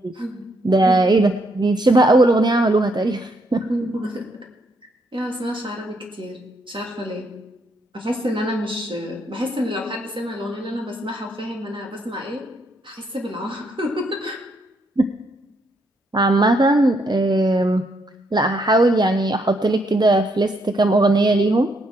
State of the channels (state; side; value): normal; both; correlation 0.74